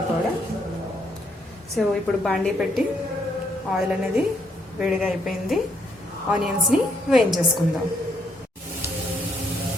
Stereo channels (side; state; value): both; normal; correlation 0.73